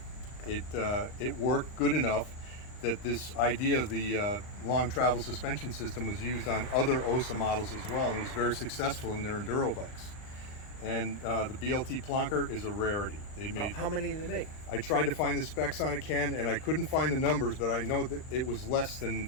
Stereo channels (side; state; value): right; late; 39 ms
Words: It worked good enough that this idea of the long travel suspension system was used on other Ossa models as well, and it was very successful in their enduro bikes. And the BLT Plonker is a rarity. They made. How many did they make? I tried to find the specs on it, Ken, and I couldn't find the numbers, but I know that it was less than